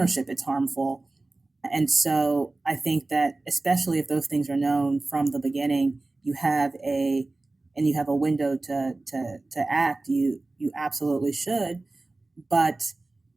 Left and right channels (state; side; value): quieter; left; 3.1 dB